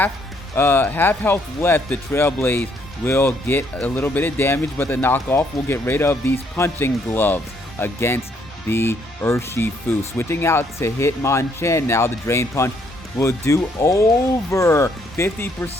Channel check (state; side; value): normal; both; correlation 0.69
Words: health left. The Trailblaze will get a little bit of damage, but the knockoff will get rid of these punching gloves against the Urshifu. Switching out to Hitmonchan now. The Drain Punch will do over